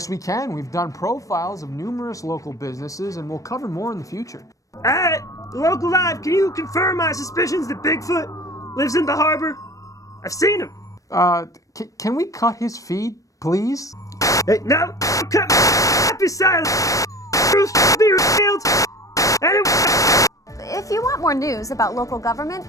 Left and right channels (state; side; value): late; right; 0.16 ms